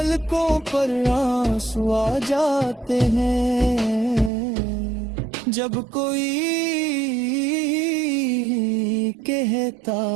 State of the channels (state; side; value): drops out; left; at 4.3 s